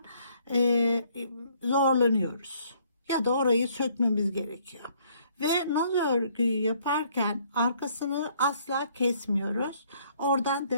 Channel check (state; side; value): inverted; both; correlation -0.64